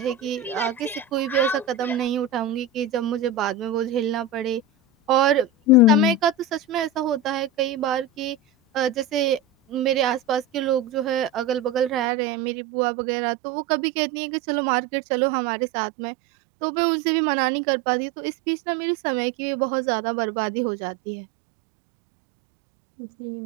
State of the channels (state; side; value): drops out; left; at 12.1 s